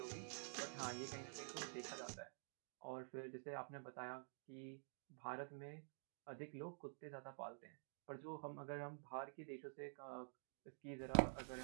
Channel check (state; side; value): silent; left; digital silence